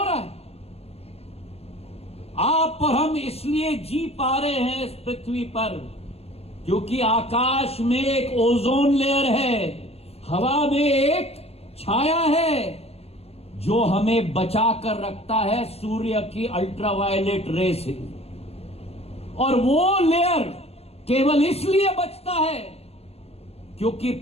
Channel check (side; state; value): right; late; 0.29 ms